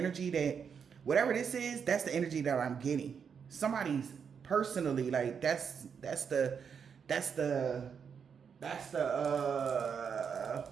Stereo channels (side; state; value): left; quieter; 6.8 dB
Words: that, whatever this is, that's the energy that I'm getting. Somebody's personally, like, that's the